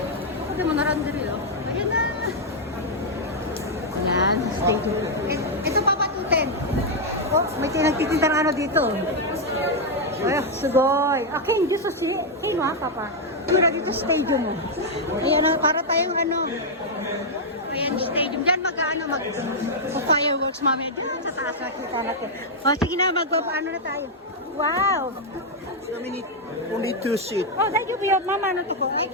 Ito mo narandiri, oh. Ayan na. Yan, stadium. Ito, Papa, 210. Oh, may nagtitinda ng ano dito. Ay, sugoy. Okay, dito sa Kino ha, Papa. Mura dito stadium mo. Ayan, para tayong ano. Ayan, stadium. Diyan mag-fireworks mamaya. Dito sa taas nakita natin. O, sige na, magpapaano na tayo. Wow! So we need only 2 seats. Oh, thank you, Pio. Mama, ano to po?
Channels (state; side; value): normal; both; correlation -0.02